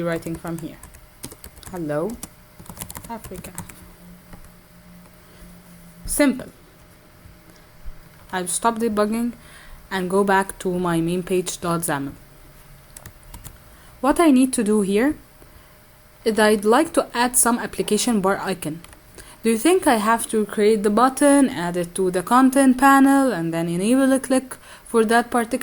writing from here. Hello, Africa. Simple. I'll stop debugging and go back to my main page.xaml. What I need to do here is I'd like to add some application bar icon. Do you think I have to create the button, add it to the content panel, and then enable a click for that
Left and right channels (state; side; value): identical; both; correlation 1.00